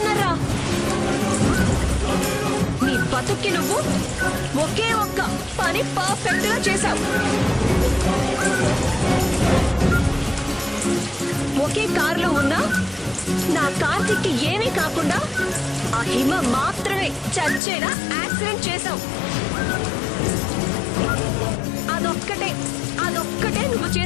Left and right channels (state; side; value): drops out; right; at 17.6 s